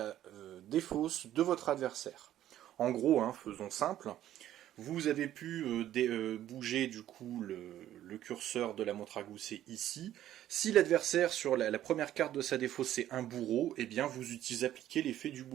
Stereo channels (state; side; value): quieter; left; 12.4 dB